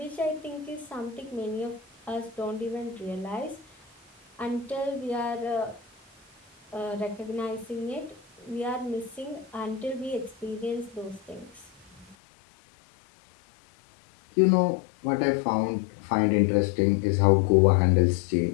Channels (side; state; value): right; drops out; at 12.2 s